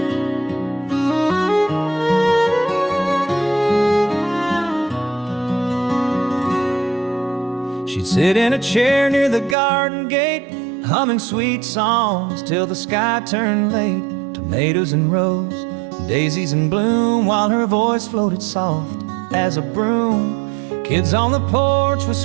She'd sit in a chair near the garden gate, humming sweet songs till the sky turned late. Tomatoes in rows, daisies in bloom, while her voice floated soft as a broom. Kids on the porch with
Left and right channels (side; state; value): left; drops out; at 9.6 s